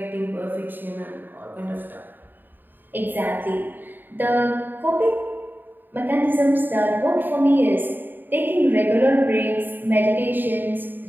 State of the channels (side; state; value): left; late; 0.092 ms